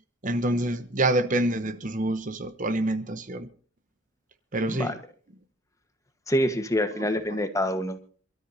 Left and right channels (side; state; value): both; normal; correlation 0.54